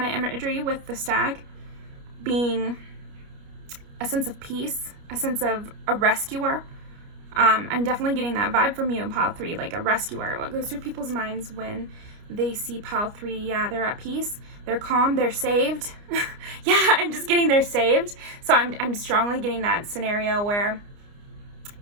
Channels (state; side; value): late; left; 29 ms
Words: of imagery with the stag being a sense of peace, a sense of a rescuer. I'm definitely getting that vibe from you in pile 3, like a rescuer. What goes through people's minds when they see pile 3? Yeah, they're at peace, they're calm, they're saved. Yeah, I'm just getting they're saved. So I'm strongly getting that scenario where,